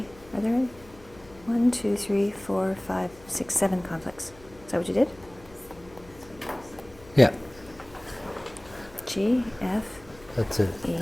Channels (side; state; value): left; noise; hum, 23 dB below the sound